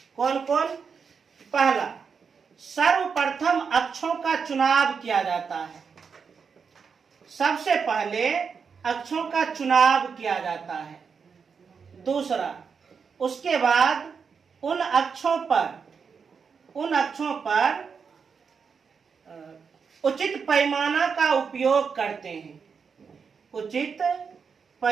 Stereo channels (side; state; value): left; quieter; 5.9 dB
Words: कौन कौन? पहला, सर्वप्रथम अक्षों का चुनाव किया जाता है। सबसे पहले अक्षों का चुनाव किया जाता है। दूसरा, उसके बाद उन अक्षों पर उचित पैमाना का उपयोग करते हैं। उचित